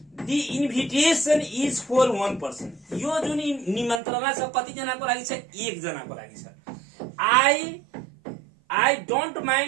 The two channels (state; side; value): drops out; left; at 4.0 s